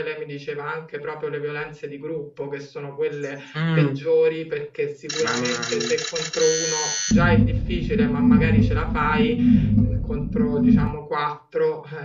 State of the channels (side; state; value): both; identical; correlation 1.00